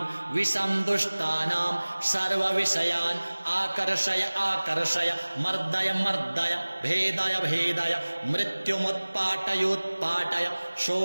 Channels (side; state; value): both; inverted; correlation -1.00